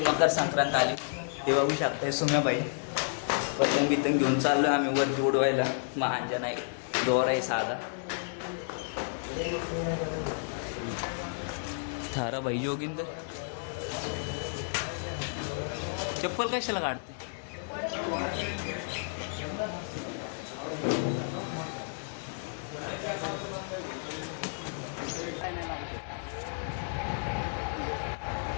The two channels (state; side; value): silent; right; digital silence